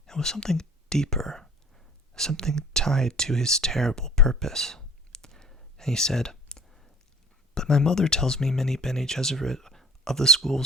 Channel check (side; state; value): both; normal; correlation 0.49